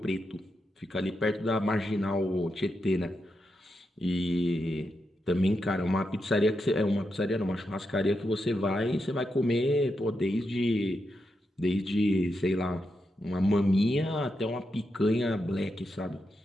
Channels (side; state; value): both; normal; correlation 0.85